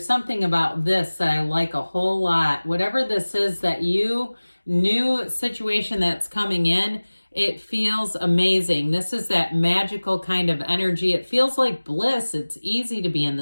something about this that I like a whole lot. Whatever this is that new situation that's coming in, it feels amazing. This is that magical kind of energy. It feels like bliss. It's easy to be in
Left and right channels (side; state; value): both; inverted; correlation -1.00